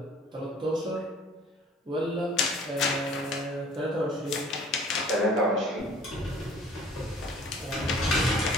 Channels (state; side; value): normal; both; correlation 0.50